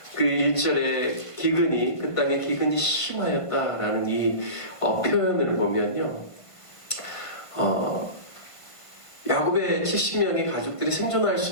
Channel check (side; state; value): right; late; 1.5 ms